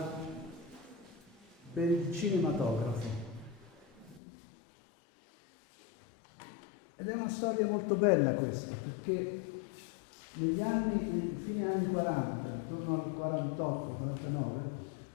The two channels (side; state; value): right; drops out; at 4.2 s